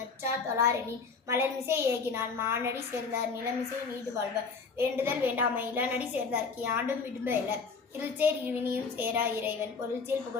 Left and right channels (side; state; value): right; quieter; 4.9 dB